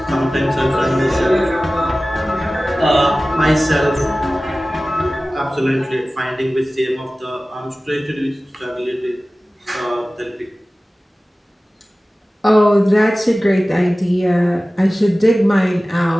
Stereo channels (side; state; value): both; normal; correlation 0.97